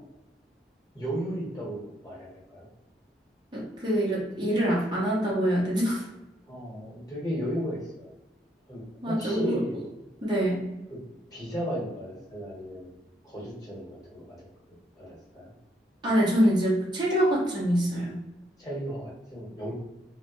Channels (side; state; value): both; normal; correlation 0.73